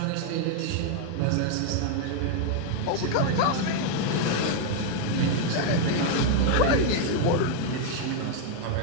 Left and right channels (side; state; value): both; different; correlation 0.00